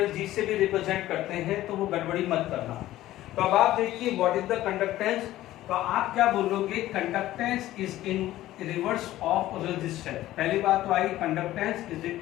जी से भी रिप्रेजेंट करते हैं, तो वो गड़बड़ी मत करना। तो अब आप देखिए व्हाट इज द कंडक्टेंस, तो आप क्या बोलोगे? Conductance is in reverse of resistance. पहली बात तो I conductance is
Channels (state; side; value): quieter; right; 15.0 dB